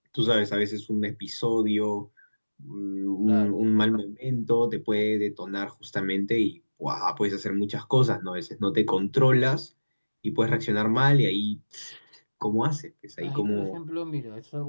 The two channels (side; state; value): both; inverted; correlation -1.00